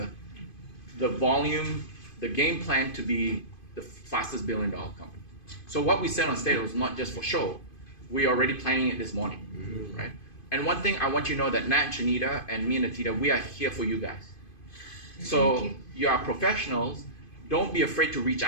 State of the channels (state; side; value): late; right; 2.5 ms